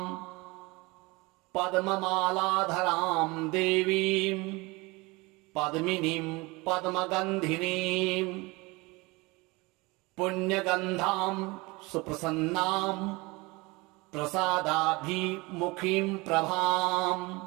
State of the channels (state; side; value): quieter; left; 24.2 dB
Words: पद्ममालाधरां देवीं पद्मिनीं पद्मगन्धिनीं पुण्यगन्धां सुप्रसन्नां प्रसादाभिमुखीं प्रभां